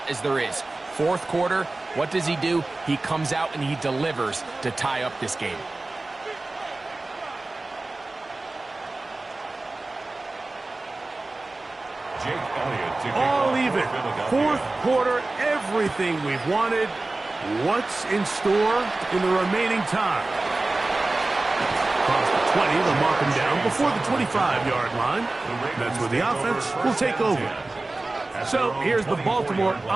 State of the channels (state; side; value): quieter; left; 3.1 dB